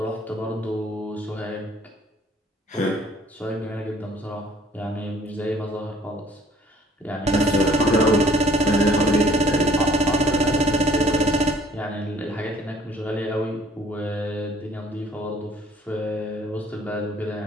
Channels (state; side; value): normal; both; correlation 0.58